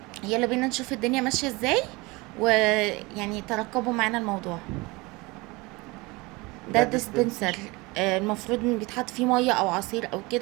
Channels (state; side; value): quieter; left; 24.0 dB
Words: يلا بينا نشوف الدنيا ماشية ازاي، ويعني ترقبوا معانا الموضوع. ده ده ديسبنسر. ديسبنسر. المفروض ان بيتحط فيه مية او عصير او